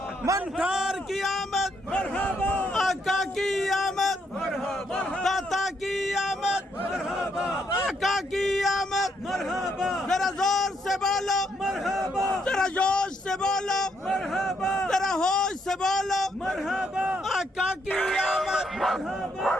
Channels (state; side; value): normal; both; correlation 0.75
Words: मनकार की आमद, आका की आमद, दाता की आमद, आका की आमद। जरा जोर से बोलो, जरा जोश से बोलो, जरा होश से बोलो, आका की आमद।